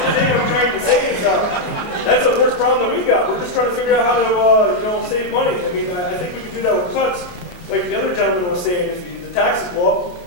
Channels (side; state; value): right; late; 28 ms